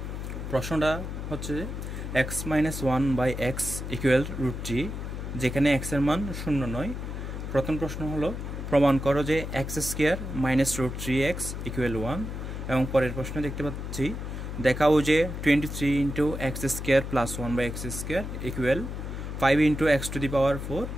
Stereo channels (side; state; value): left; noise; hum, 6 dB below the sound